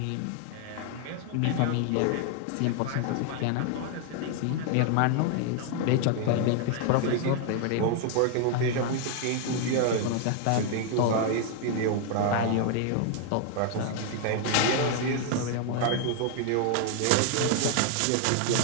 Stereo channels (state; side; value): different; both; correlation 0.00